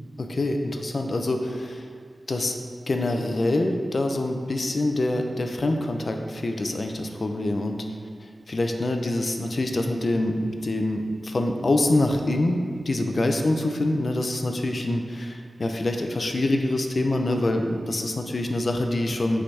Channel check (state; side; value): normal; both; correlation 0.94